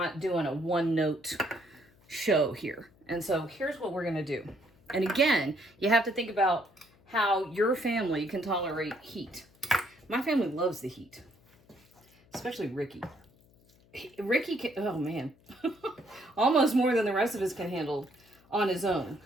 doing a one-note show here. And so here's what we're going to do. And again, you have to think about how your family can tolerate heat. My family loves the heat, especially Ricky. Ricky can, oh man, almost more than the rest of us can handle on his own,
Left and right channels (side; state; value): left; noise; hum, 30 dB below the sound